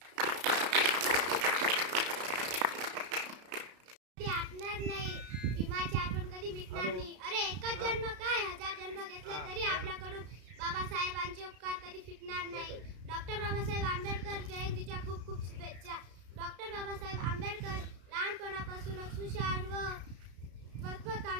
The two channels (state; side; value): late; left; 33 ms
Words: ते आटणार नाही, भीमाची आठवण कधी मिटणार नाही. अरे एकच जन्म काय, 1000 जन्म घेतले तरी आपल्याकडून बाबासाहेबांचे उपकार कधी फिटणार नाही. डॉक्टर बाबासाहेब आंबेडकर जयंतीच्या खूप खूप शुभेच्छा. डॉक्टर बाबासाहेब आंबेडकर लहानपणापासूनच हुशार व